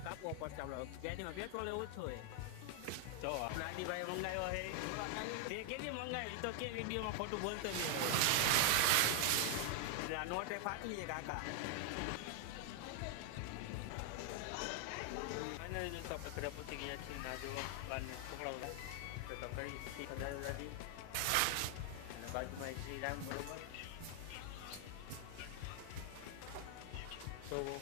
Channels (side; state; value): both; different; correlation 0.00